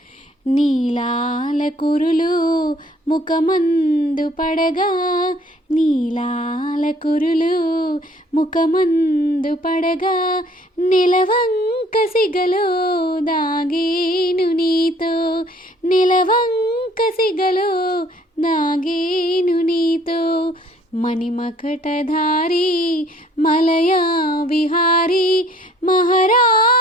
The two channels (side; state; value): both; normal; correlation 0.58